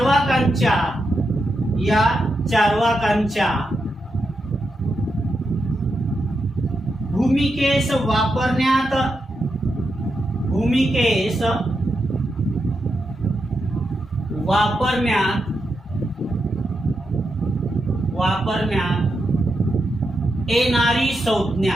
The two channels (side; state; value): both; normal; correlation 0.85